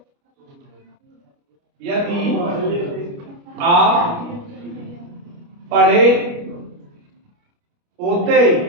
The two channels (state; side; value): late; left; 29 ms